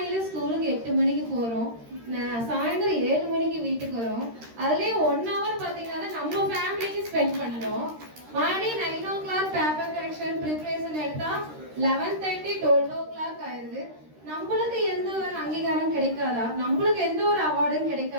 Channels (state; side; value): late; left; 13 ms